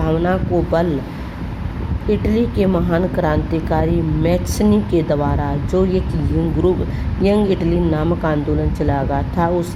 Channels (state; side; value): identical; both; correlation 1.00